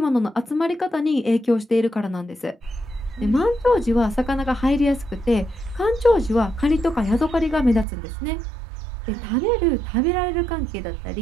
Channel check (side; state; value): left; drops out; at 7.9 s